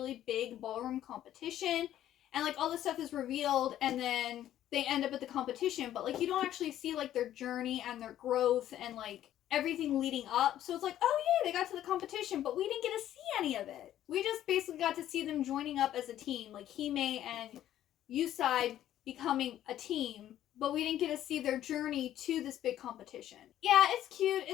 big ballroom competition, and like all this stuff is revealed, and then they end up at the competition, but like you don't actually see like their journey and their growth and like everything leading up. So it's like, oh yeah, they got to the competition, but we didn't get to see any of it. We just basically got to see them joining up as a team, like Hime and Yusai becoming a team, but we didn't get to see their journey to this big competition. Yeah, it's cute,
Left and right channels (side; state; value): right; quieter; 12.1 dB